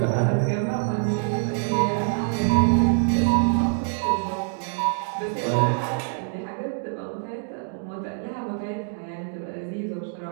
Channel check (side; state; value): left; silent; 62 dB below the other